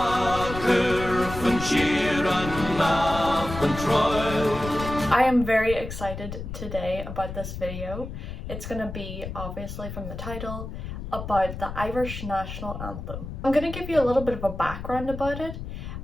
I am very excited today about this video. It's going to be, obviously from the title, about the Irish National Anthem. I'm going to give you a little bit of a background about it,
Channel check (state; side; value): noise; left; rumble, 8 dB below the sound